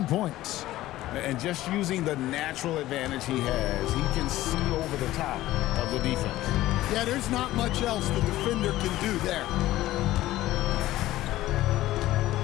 points. And just using the natural advantage he has, he can see over the top of the defense. Yeah, there's not much else the defender can do there.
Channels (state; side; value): quieter; right; 15.6 dB